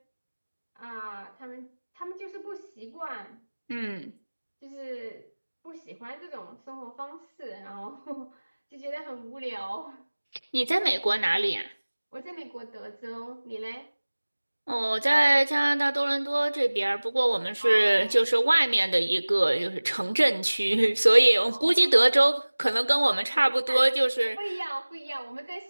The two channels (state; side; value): inverted; both; correlation -1.00